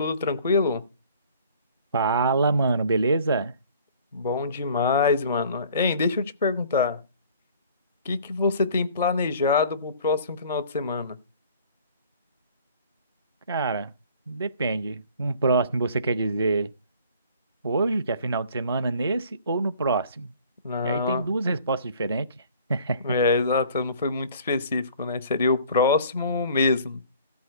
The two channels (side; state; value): both; inverted; correlation -0.52